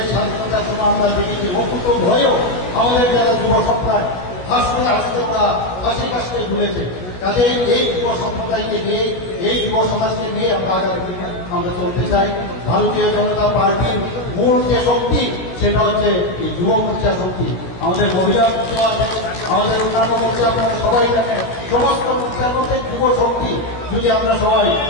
স্বাধীনতার সময় আমরা দেখেছি অকুত ভয়েও আমাদের যারা যুব সম্প্রদায় হাসতে হাসতে ওরা হাসি কাশতে ভুলেছে। কাজে এই যুব সম্প্রদায়কে নিয়ে, এই যুব সমাজকে নিয়ে আমরা চলতে চাই। ভারতীয় জনতা পার্টির মূল যে শক্তি সেটা হচ্ছে এই যুব মোর্চা শক্তি। আমাদের মহিলা মোর্চা আছে, আমাদের অন্যান্য মোর্চা আপনারা সবাই জানেন। সমস্ত মোর্চার মধ্যে যুব শক্তি যদি আমরা সবাই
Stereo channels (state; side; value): late; right; 16 ms